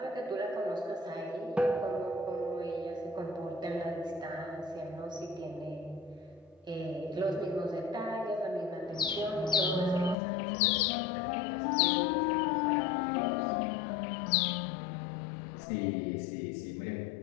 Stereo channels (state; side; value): drops out; right; at 10.2 s